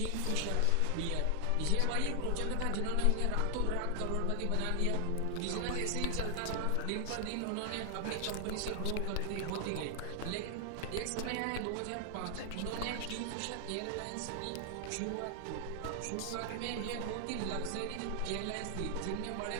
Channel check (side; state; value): both; different; correlation 0.00